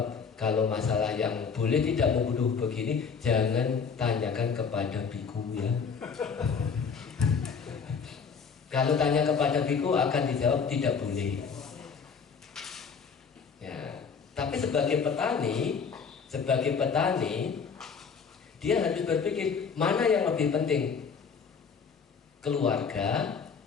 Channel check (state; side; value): quieter; right; 5.9 dB